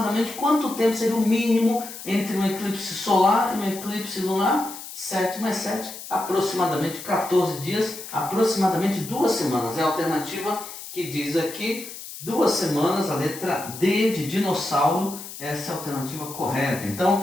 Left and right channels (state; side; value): noise; left; hiss, 12 dB below the sound